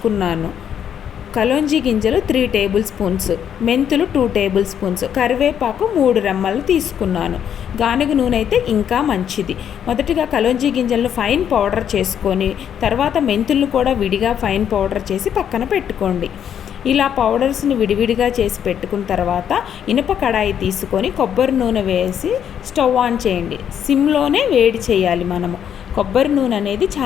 కలోంజీ గింజలు 3 టేబుల్ స్పూన్స్, మెంతులు 2 టేబుల్ స్పూన్స్, కరివేపాకు 3 రెమ్మలు తీసుకున్నాను. గానుగ నూనె అయితే ఇంకా మంచిది. మొదటిగా కలోంజీ గింజలను ఫైన్ పౌడర్ చేసుకొని తర్వాత మెంతులను కూడా విడిగా ఫైన్ పౌడర్ చేసి పక్కన పెట్టుకోండి. ఇలా పౌడర్స్ని విడివిడిగా చేసి పెట్టుకున్న తర్వాత ఇనుప కడాయి తీసుకొని కొబ్బరి నూనె వేసి స్టవ్ ఆన్ చేయండి. సిమ్లోనే వేడి చేయాలి. కొబ్బరి నూనె అనేది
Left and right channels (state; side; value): quieter; right; 9.0 dB